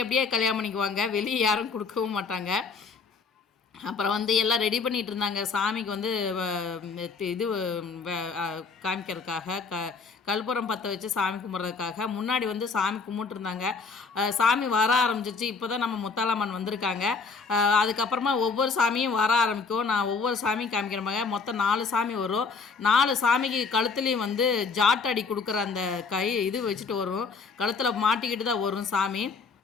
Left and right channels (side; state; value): right; quieter; 4.9 dB